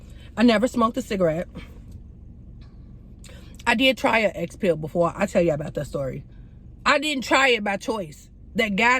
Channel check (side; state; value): both; identical; correlation 1.00